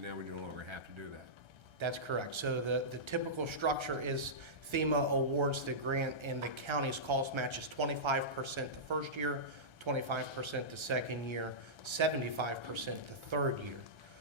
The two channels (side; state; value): left; late; 1.3 ms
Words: now we no longer have to do that. That's correct. So the typical structure is FEMA awards the grant and the county's cost match is 25% the first year, 25% the second year, 75% the third year.